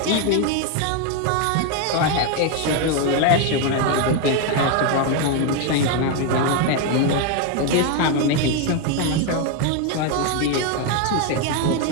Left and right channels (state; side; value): different; both; correlation 0.01